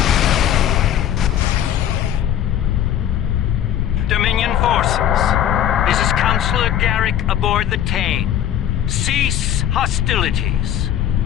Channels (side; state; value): right; quieter; 10.6 dB